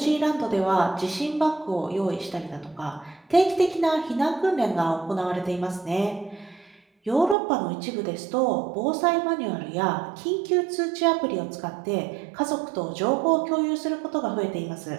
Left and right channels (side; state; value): left; drops out; at 7.4 s